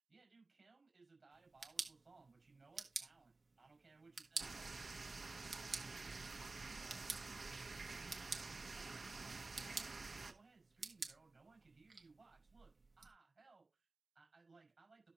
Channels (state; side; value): quieter; left; 3.5 dB